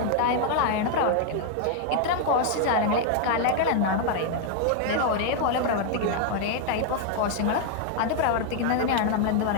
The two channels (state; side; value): different; both; correlation 0.00